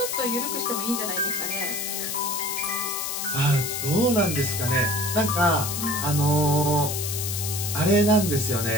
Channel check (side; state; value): left; noise; hiss, 3 dB below the sound